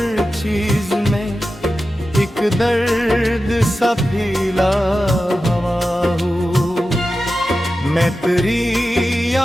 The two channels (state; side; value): normal; both; correlation 0.93